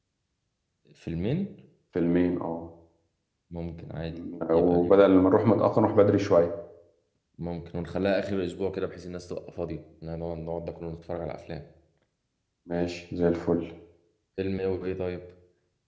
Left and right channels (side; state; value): both; identical; correlation 1.00